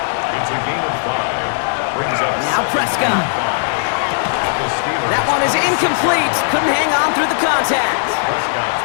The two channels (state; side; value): silent; right; digital silence